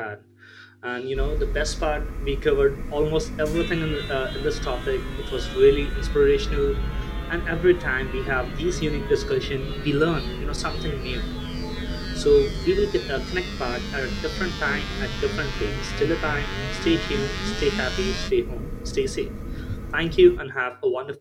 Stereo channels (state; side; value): identical; both; correlation 1.00